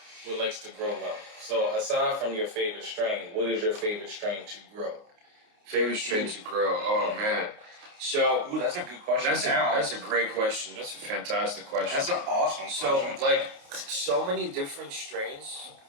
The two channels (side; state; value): left; late; 28 ms